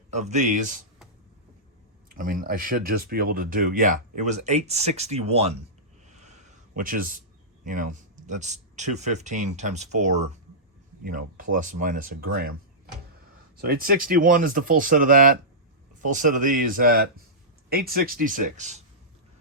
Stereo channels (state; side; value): normal; both; correlation -0.15